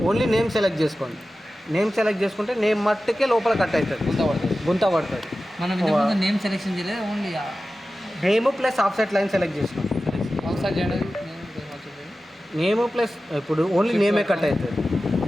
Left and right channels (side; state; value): both; normal; correlation 0.95